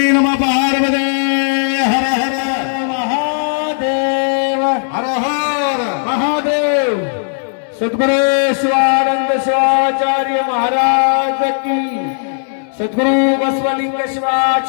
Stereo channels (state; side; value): silent; right; digital silence